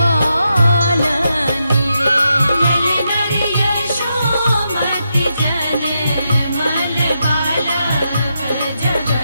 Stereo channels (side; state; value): both; inverted; correlation -0.84